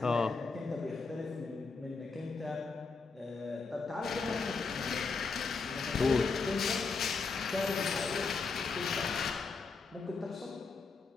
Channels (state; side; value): quieter; right; 4.5 dB